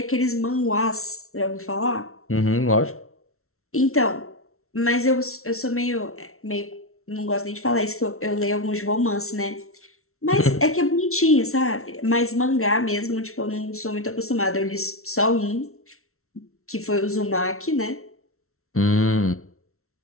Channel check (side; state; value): right; late; 0.63 ms